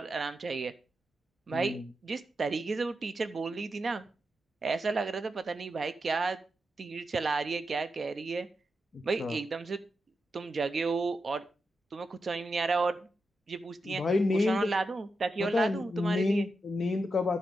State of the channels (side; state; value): both; normal; correlation 0.87